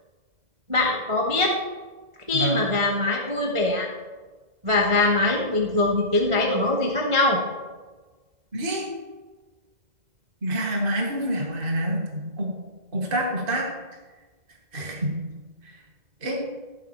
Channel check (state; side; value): late; left; 2.0 ms